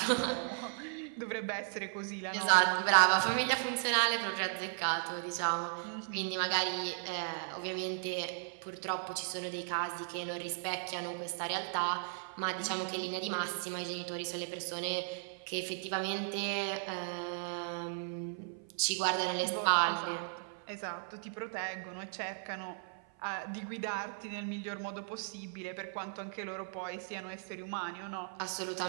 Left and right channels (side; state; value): left; silent; 54 dB below the other